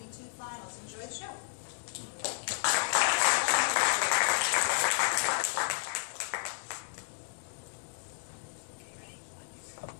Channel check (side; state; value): right; silent; digital silence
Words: finals. Enjoy the show.